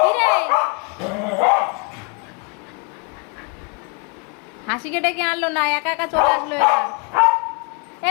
রে? হাসিকে ডেকে আনলো না, একা একা চলে আসলো এটা।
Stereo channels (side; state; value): right; quieter; 32.5 dB